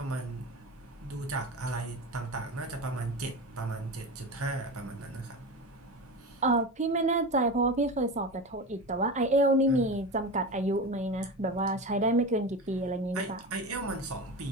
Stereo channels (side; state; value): both; normal; correlation 0.26